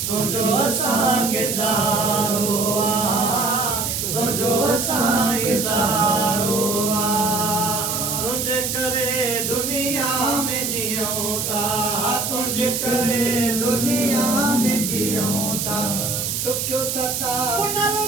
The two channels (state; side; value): noise; right; hiss, 1 dB below the sound